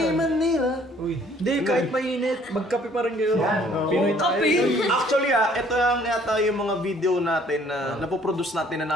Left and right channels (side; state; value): both; normal; correlation 0.59